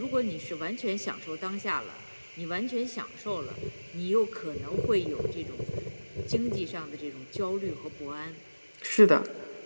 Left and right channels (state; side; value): inverted; both; correlation -1.00